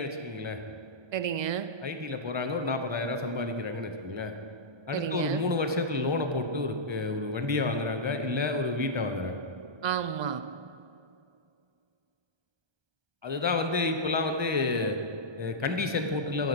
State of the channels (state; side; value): late; left; 1.2 ms